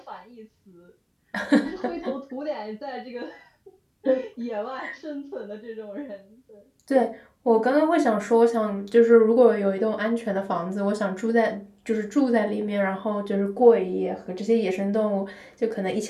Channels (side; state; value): both; identical; correlation 1.00